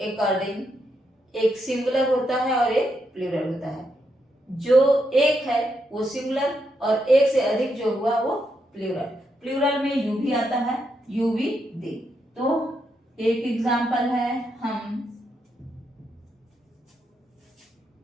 अकॉर्डिंग एक सिंगुलर होता है और एक प्लूरल होता है। जो एक है वो सिंगुलर, और एक से अधिक जो हुआ वो प्लूरल। प्लूरल में यू भी आता है, यू भी दे। तो एक एग्जांपल है, हम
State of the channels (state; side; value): normal; both; correlation 0.81